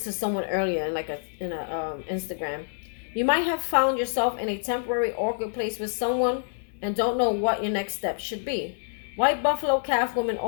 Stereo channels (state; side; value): silent; right; 60 dB below the other